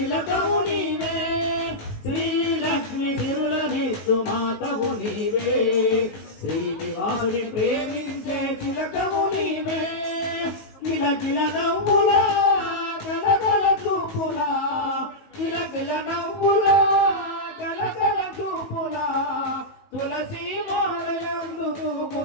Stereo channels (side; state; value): right; late; 19 ms